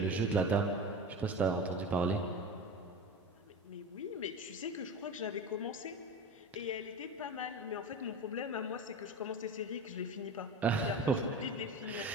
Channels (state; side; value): normal; both; correlation 0.28